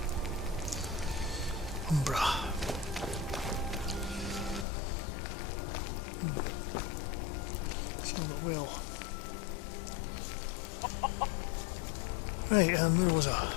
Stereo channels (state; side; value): drops out; right; at 4.7 s